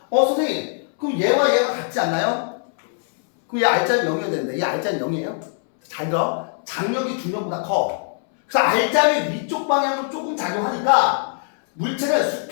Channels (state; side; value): silent; right; 62 dB below the other